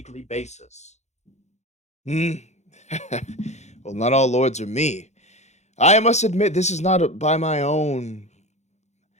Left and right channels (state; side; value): late; right; 0.33 ms